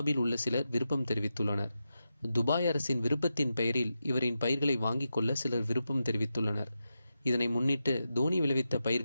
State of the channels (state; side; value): inverted; both; correlation -0.89